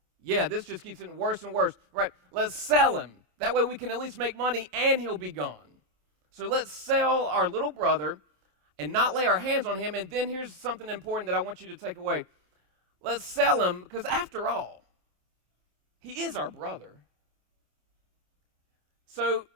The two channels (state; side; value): late; left; 27 ms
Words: Yeah, this just keeps getting worse and worse. Right, let's sell him. That way we can at least make money and he'll be gone. So let's sell our little brother and not lay our hands on him. And then here's something important that I want you to take away. Let's sell him because after all, he is our brother. So